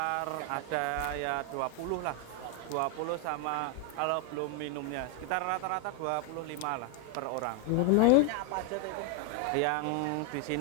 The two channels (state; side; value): different; both; correlation 0.01